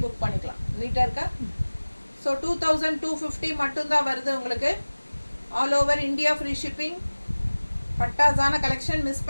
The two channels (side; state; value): both; inverted; correlation -1.00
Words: புக் பண்ணிக்கலாம். நீட்டாக இருக்கா? ஸோ 2250 மட்டும்தான் வருது உங்களுக்கு. All over India free shipping. பட்டாசான கலெக்ஷன், மிஸ்